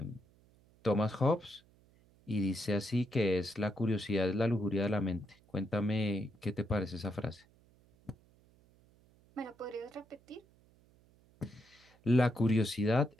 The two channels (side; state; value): right; noise; hum, 30 dB below the sound